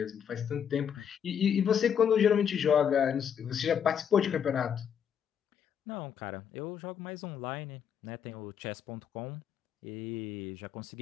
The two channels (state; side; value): quieter; right; 8.1 dB